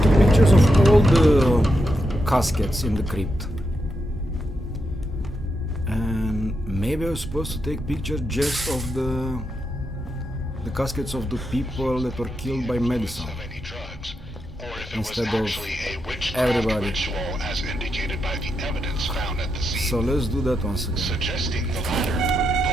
took pictures of all the caskets in the crypt. And maybe I was supposed to take pictures just of the caskets of the people that were killed by MADiSON, instead of everybody. As indicated by the evidence found at the scene. So let's do that once again. Suggesting the latter,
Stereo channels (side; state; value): both; normal; correlation 0.84